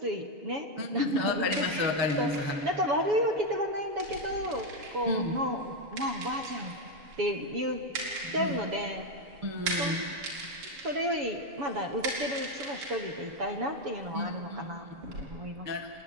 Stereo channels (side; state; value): left; late; 7.1 ms